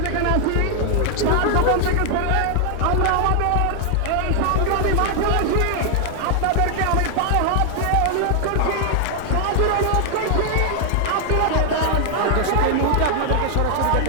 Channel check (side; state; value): both; different; correlation 0.00